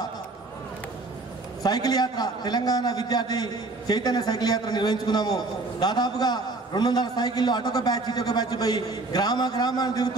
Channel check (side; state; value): left; quieter; 3.3 dB